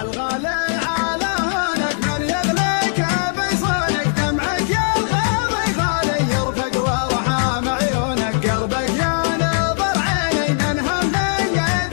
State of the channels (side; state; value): right; silent; digital silence